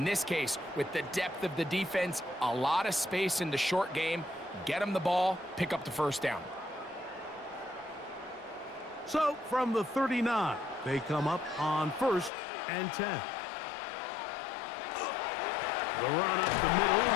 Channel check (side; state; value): right; drops out; at 12.3 s